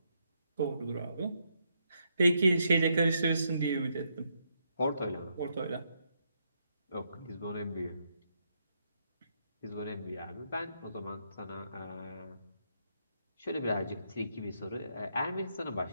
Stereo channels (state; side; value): inverted; both; correlation -0.77